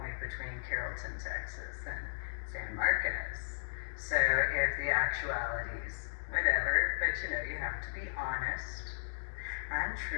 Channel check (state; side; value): silent; right; digital silence